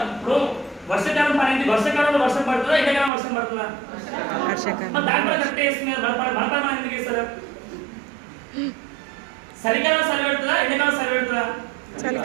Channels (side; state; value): left; drops out; at 3.1 s